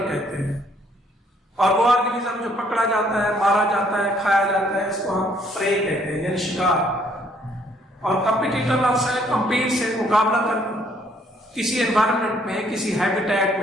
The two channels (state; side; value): normal; both; correlation 0.65